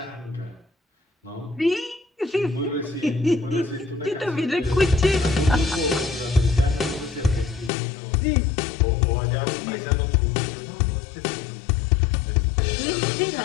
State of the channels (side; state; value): right; drops out; at 7.7 s